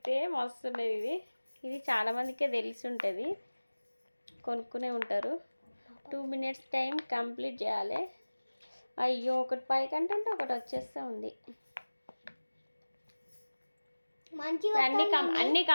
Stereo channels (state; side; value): inverted; both; correlation -1.00